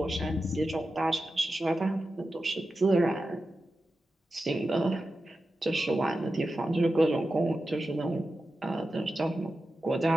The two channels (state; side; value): normal; both; correlation 0.91